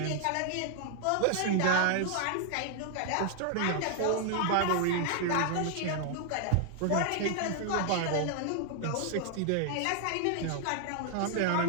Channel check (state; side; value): different; both; correlation 0.00